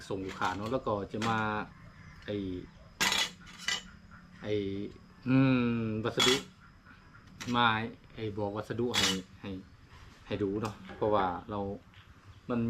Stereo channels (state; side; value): identical; both; correlation 1.00